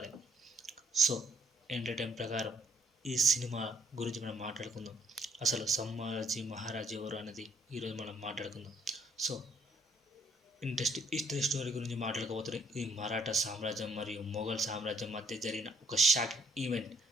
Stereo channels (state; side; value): normal; both; correlation 0.67